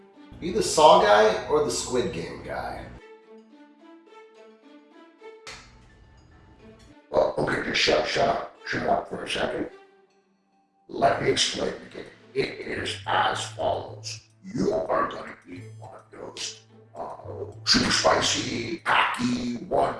you the Saw guy or the Squid Game guy? Well, okay, just shut up for a second. Let me explain the game. It is as follows. You are going to be one of those super spicy, packy,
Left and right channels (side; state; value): both; identical; correlation 1.00